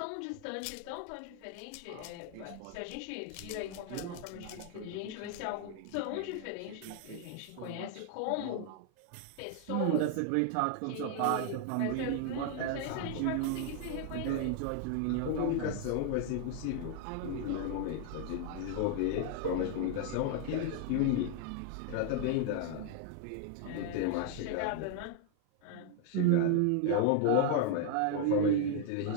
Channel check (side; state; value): both; different; correlation 0.00